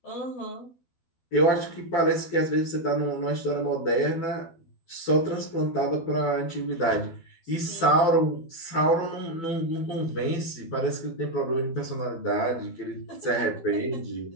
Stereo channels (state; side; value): late; right; 12 ms